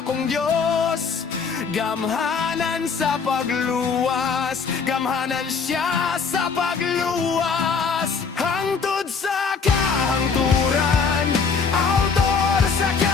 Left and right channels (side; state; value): right; quieter; 5.5 dB